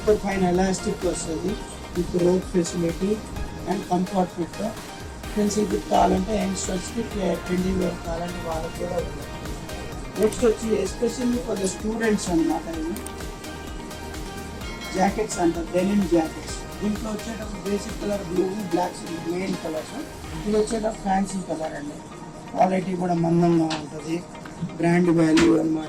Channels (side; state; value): both; identical; correlation 1.00